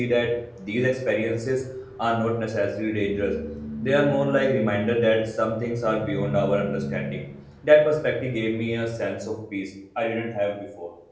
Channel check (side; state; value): both; identical; correlation 1.00